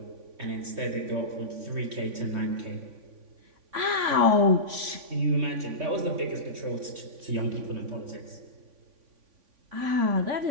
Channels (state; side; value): late; left; 3.5 ms